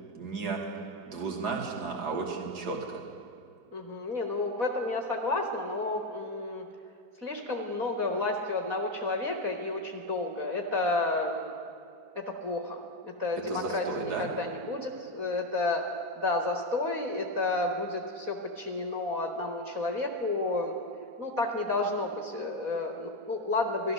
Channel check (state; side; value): late; left; 4.1 ms